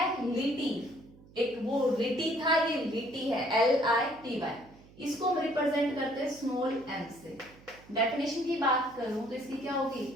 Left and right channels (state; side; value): noise; right; hum, 24 dB below the sound